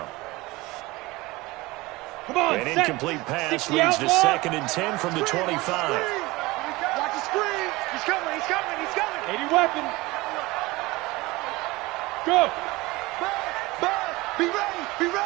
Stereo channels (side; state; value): left; quieter; 21.4 dB